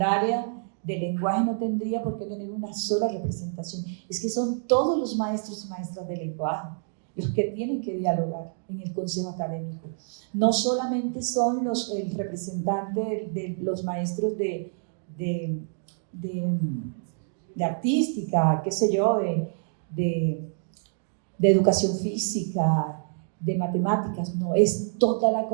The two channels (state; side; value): silent; left; digital silence